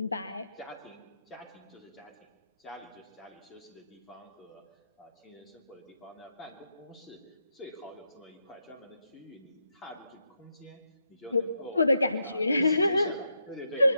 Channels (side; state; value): both; inverted; correlation -0.83